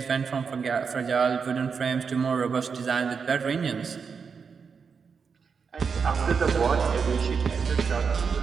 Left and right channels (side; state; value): left; quieter; 5.8 dB